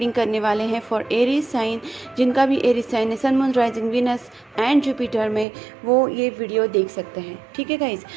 करने वाले हैं फॉर एरीज साइन। जिनका भी एरीज साइन है, sun moon rising Venus and Jupiter में, वो ये वीडियो देख सकते हैं। ठीक है गाइज़,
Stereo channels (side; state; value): left; drops out; at 5.5 s